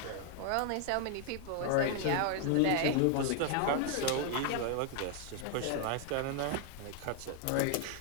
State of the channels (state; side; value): different; both; correlation 0.00